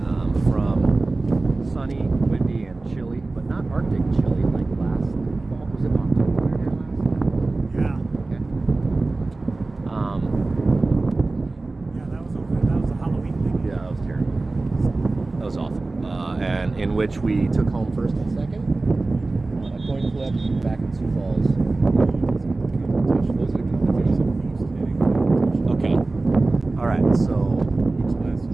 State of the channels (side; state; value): left; quieter; 3.3 dB